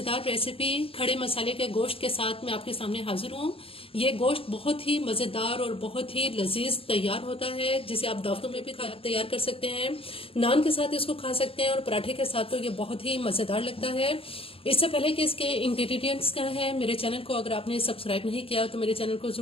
रेसिपी खड़े मसाले के गोश्त के साथ मैं आपके सामने हाजिर हूँ। ये गोश्त बहुत ही मज़ेदार और बहुत ही लजीज तैयार होता है, जिसे आप दावतों में भी तैयार कर सकते हैं, नान के साथ इसको खा सकते हैं और पराठे के साथ तो ये बहुत ही मज़ेदार लगता है। इससे पहले कि इसके इंग्रेडिएंट्स क्या है, मेरे चैनल को अगर आपने सब्सक्राइब नहीं किया तो मेरे चैनल को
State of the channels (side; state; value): right; late; 0.27 ms